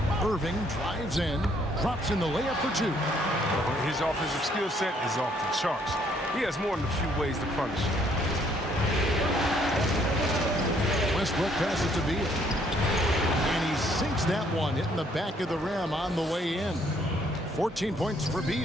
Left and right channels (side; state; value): both; normal; correlation 0.66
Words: Irving drives in. Drops in the layup for 2. His offensive skill set is off the charts. He has more than a few ways to punish. Westbrook passes to Beal. And he sinks that one, hitting the back of the rim on the way in. 14 points for